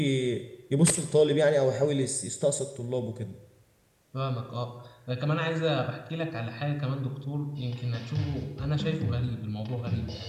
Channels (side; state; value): both; identical; correlation 1.00